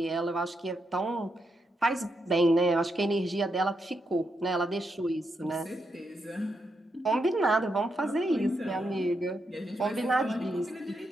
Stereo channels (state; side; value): normal; both; correlation 0.82